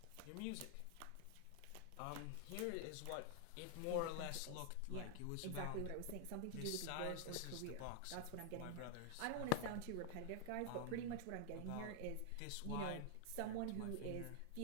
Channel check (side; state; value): both; different; correlation 0.00